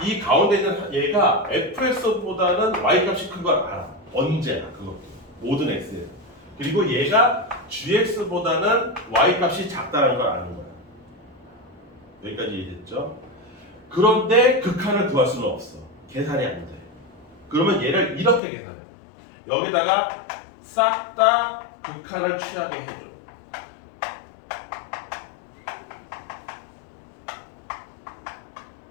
이 가운데 있는 얘가 fx보다는 y 값이 큰 걸 알아. 언제나 그것도 모든 x에. 그리고 얘가 gx보다는 y 값이 작다는 걸 아는 거야. 여기까지 이해됐죠? 그런데 극한을 구할 수는 없어. 계산이 안 돼. 그러면 얘를 이렇게 계산해. 여기다가 싹 다 극한을 취하게 해줘.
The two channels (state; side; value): drops out; right; at 18.4 s